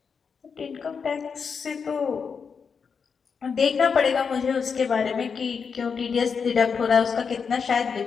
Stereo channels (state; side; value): quieter; right; 6.0 dB